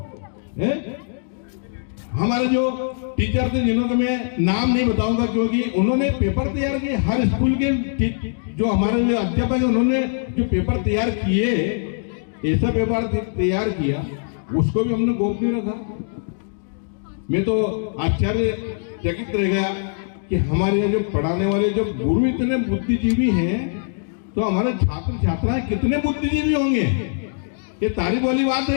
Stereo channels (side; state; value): right; silent; digital silence